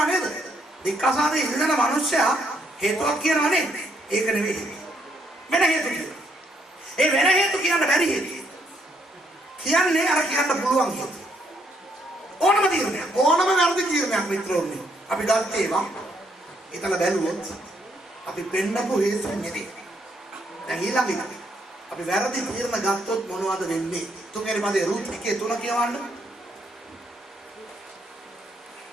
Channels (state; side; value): normal; both; correlation 0.73